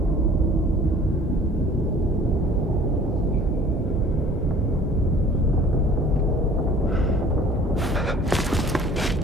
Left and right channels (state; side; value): normal; both; correlation 0.50